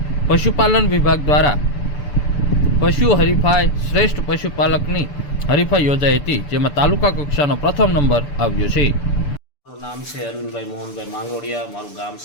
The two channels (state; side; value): late; right; 6.8 ms